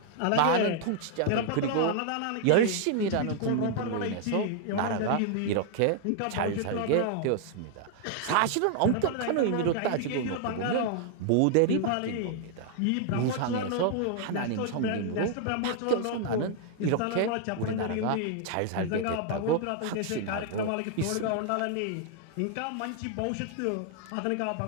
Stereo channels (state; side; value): different; both; correlation 0.00